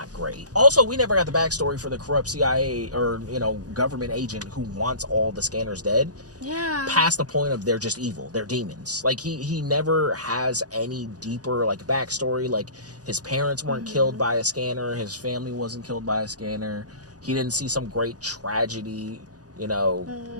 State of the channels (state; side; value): late; left; 0.68 ms